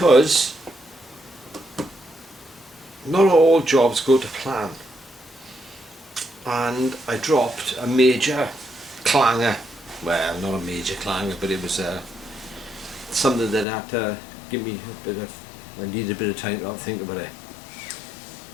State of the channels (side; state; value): right; drops out; at 13.7 s